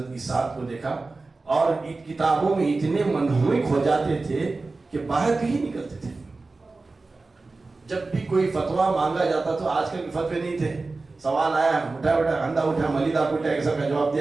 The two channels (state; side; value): quieter; left; 3.6 dB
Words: کی ساتھ کو دیکھا، اور کتابوں میں اتنے منہمک ہو جاتے تھے کہ باہر کہیں نکلتے تھے. جب بھی کوئی فتویٰ مانگا جاتا تو آج کل فتوے نہیں تھے، سوال آیا اٹھا انڈا اٹھا ملیدہ اٹھا ایک سب کا جواب